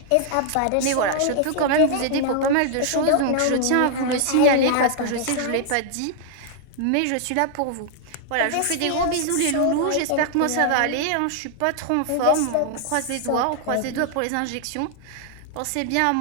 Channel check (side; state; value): both; different; correlation 0.00